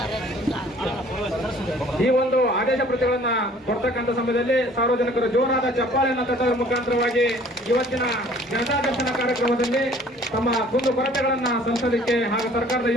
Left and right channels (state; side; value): normal; both; correlation 0.54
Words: ಈ ಒಂದು ಆದೇಶ ಪ್ರತಿಗಳನ್ನ ಕೊಡ್ತಕ್ಕಂಥ ಸಮಯದಲ್ಲಿ ಸಾರ್ವಜನಿಕರು ಜೋರಾದ ಚಪ್ಪಾಳೆಯನ್ನು ತಟ್ಟುವ ಮುಖಾಂತರವಾಗಿ ಇವತ್ತಿನ ಜನತಾ ದರ್ಶನ ಕಾರ್ಯಕ್ರಮದಲ್ಲಿ ತಮ್ಮ ಕುಂದು ಕೊರತೆಗಳನ್ನ ಸಲ್ಲಿಸಲಿಕ್ಕೆ ಹಾಗೂ ಸರ್ಕಾರದ